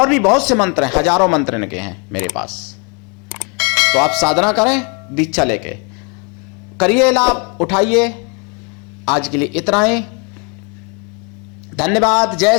भी बहुत से मंत्र हैं, हजारों मंत्र इनके हैं मेरे पास। तो आप साधना करें दीक्षा लेके, करिए लाभ, उठाइए। आज के लिए इतना ही, धन्यवाद। जय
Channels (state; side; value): quieter; right; 34.5 dB